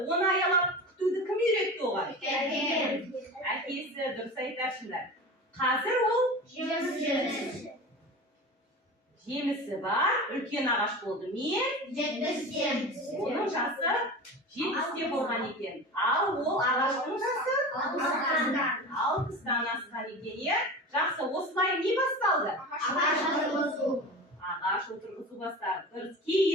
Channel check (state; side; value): normal; both; correlation 0.31